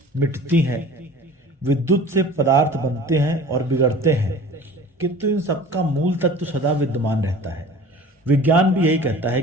मिटती हैं, विद्युत से पदार्थ बनते हैं और बिगड़ते हैं, किंतु इन सबका मूल तत्व सदा विद्यमान रहता है। विज्ञान भी यही कहता है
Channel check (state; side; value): normal; both; correlation 0.43